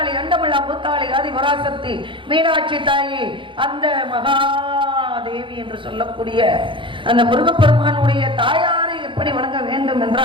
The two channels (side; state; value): left; late; 0.24 ms